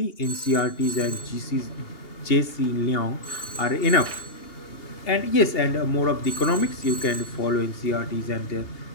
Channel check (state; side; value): late; right; 2.8 ms